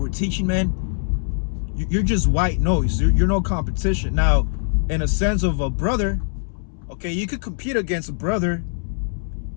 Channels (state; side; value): silent; right; 64 dB below the other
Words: we're teaching, man, you're just white noise. You're no competition. Now, in a sense of a brother, okay, you could compete against a brother,